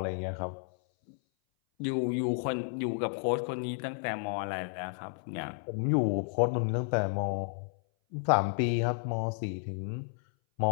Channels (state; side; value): silent; right; 57 dB below the other